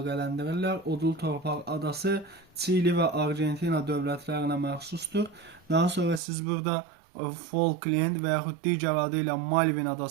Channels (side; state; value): left; drops out; at 6.2 s